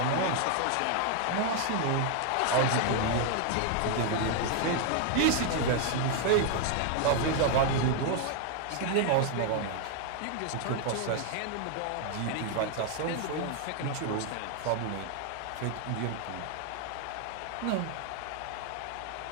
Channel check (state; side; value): different; both; correlation 0.00